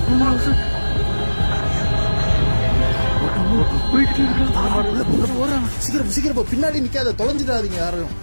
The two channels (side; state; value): both; inverted; correlation -1.00